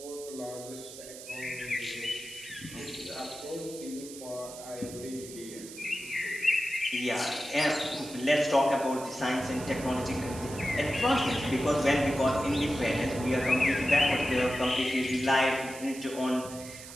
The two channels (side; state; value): right; noise; hiss, 14 dB below the sound